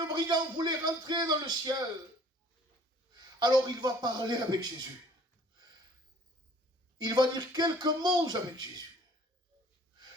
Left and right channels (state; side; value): normal; both; correlation 0.54